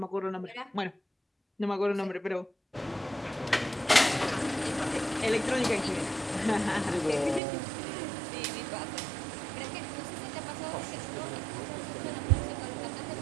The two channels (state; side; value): drops out; left; at 7.4 s